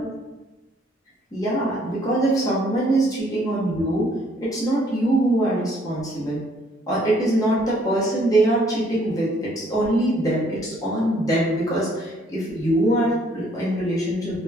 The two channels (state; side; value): normal; both; correlation 0.63